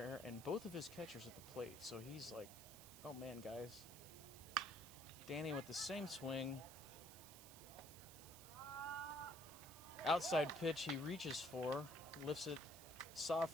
and both of his catchers at the plate. So he's like, oh man, guys. Danny with the same swing. Outside pitch he reaches for, lifts it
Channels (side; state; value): right; noise; hiss, 14 dB below the sound